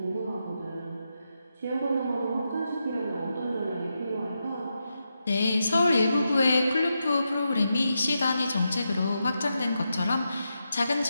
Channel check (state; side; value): inverted; both; correlation -0.86